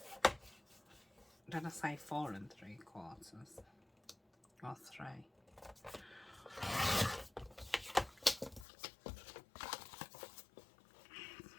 Did I say 4 3/4 or 3?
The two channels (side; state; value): right; drops out; at 8.7 s